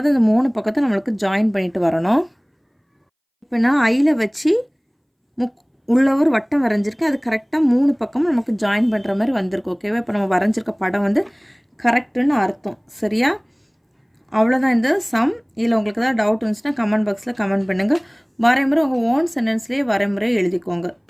அந்த 3 பக்கத்தை நம்மளுக்கு ஜாயின் பண்ணிட்டு வரணும். இப்போ நான் ஐயில் வச்சு உள்ள ஒரு வட்டம் வரைஞ்சிருக்கேன். அது கரெக்டாக 3 பக்கமும் நமக்கு ஜாயின் பண்ணுற மாதிரி வந்திருக்கு. ஓகேவா, இப்போ நம்ம வரைஞ்சிருக்க படம் கரெக்டுன்னு அர்த்தம். சரியா, அவ்வளோதான் இந்த சம். இதில் உங்களுக்கு ஏதாவது டவுட் இருந்துச்சுன்னா கமெண்ட் பாக்ஸில் கமெண்ட் பண்ணுங்கள். வரைமுறை உங்கள் ஓன் சென்டென்ஸ்லேயே வரைமுறை எழுதிக்கோங்க.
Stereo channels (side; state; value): both; identical; correlation 1.00